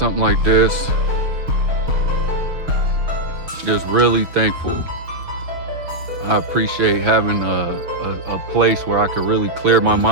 like this. Just really thankful. I appreciate having a place where I could really clear my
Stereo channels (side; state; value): left; late; 6.3 ms